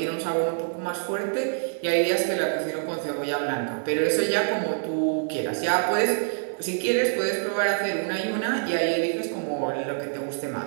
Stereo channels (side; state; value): left; silent; digital silence